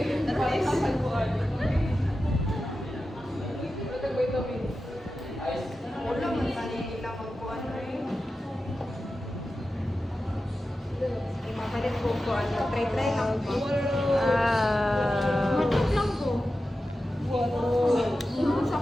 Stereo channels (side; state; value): both; normal; correlation 0.92